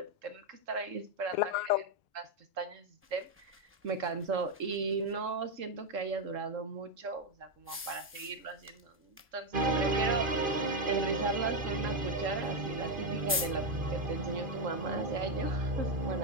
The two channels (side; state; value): both; normal; correlation 0.04